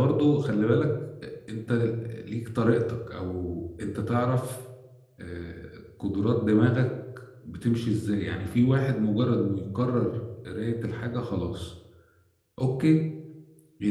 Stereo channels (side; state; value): both; identical; correlation 1.00